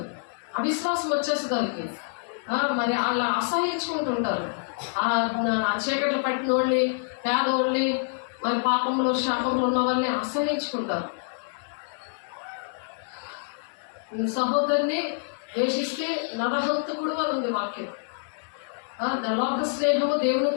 అవిశ్వాసం వచ్చేస్తుంది దానికి. మరి వాళ్ళు అసహించుకుంటుంటారు. ఆ చీకట్లు పట్టిన వాళ్ళని, పేదోళ్ళని, మరి పాపంలో శాపంలో ఉన్న వాళ్ళని అసహించుకుంటారు. సహోదరుని ద్వేషిస్తే నరహంతకుడు అని ఉంది వాక్యం. లోక స్నేహము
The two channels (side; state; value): right; silent; digital silence